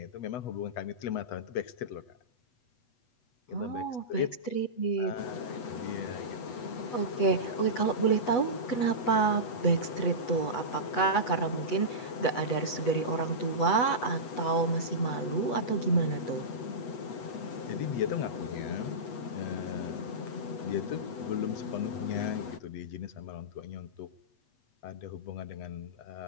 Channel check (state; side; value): late; right; 8.1 ms